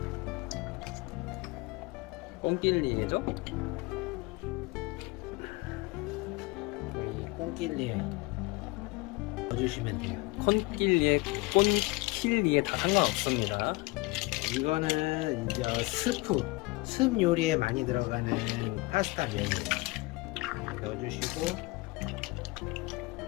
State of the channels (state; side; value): quieter; right; 24.1 dB